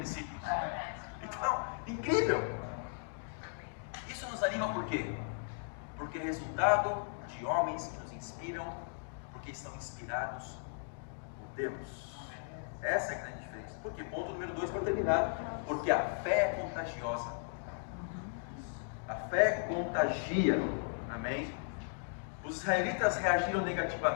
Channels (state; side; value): silent; right; digital silence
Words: discípulos. Então, incrível! Isso nos anima por quê? Porque é resultado de homens que nos inspiram, porque estão inspirados por Deus. Essa é a grande diferença. Por quê? Ponto número 2 para terminar. Porque a fé é contagiosa. A fé contagia. Amém? Os israelitas reagiram